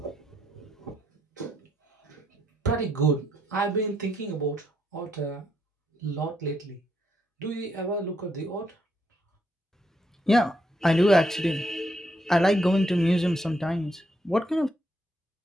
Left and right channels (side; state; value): both; normal; correlation 0.76